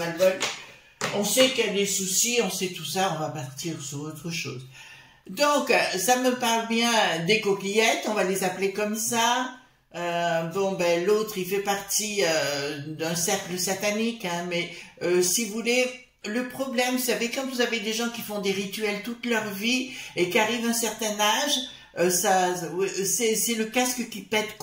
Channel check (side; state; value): both; identical; correlation 1.00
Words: On sait qu'il y a des soucis, on sait tout ça, on va partir sur autre chose. Donc, ça me parle bien des coquillettes, on va les appeler comme ça. Bon, ben, l'autre, il fait partie d'un cercle satanique, hein, mais si vous voulez... Le problème, vous savez, quand vous avez des gens qui font des rituels toute leur vie et qui arrivent à un certain âge, c'est le casque qui pète